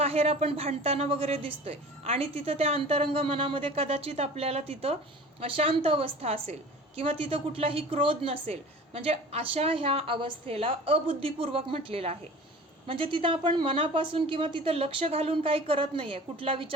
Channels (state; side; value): normal; both; correlation 0.41